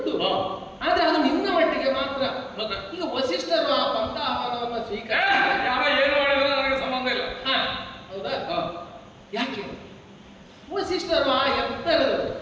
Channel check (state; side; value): identical; both; correlation 1.00